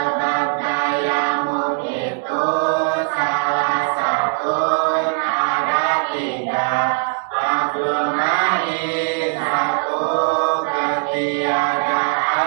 tayamum itu salah satu ada 3. Fakul ma'i, 1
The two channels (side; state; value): left; silent; 66 dB below the other